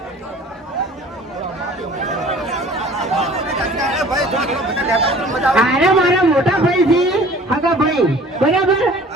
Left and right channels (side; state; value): both; normal; correlation 0.48